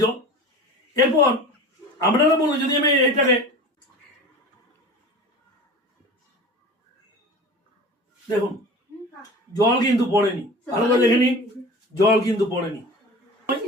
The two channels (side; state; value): both; normal; correlation 0.36